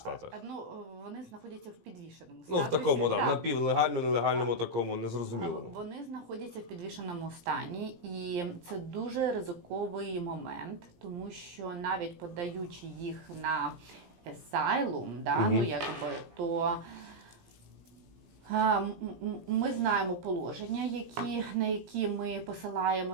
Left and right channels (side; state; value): left; late; 17 ms